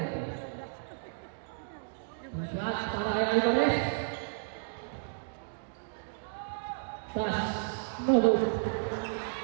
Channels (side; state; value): left; silent; digital silence